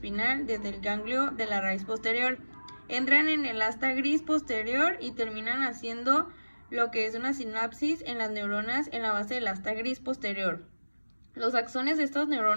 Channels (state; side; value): inverted; both; correlation -1.00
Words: desde el ganglio de la raíz posterior. Entran en el asta gris posterior y terminan haciendo lo que es una sinapsis en las neuronas en la base del asta gris posterior. Los axones de estas